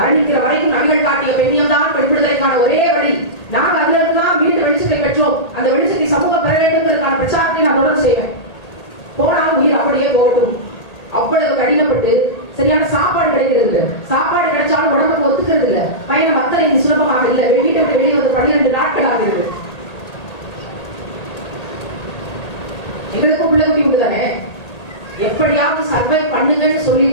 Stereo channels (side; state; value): right; late; 1.8 ms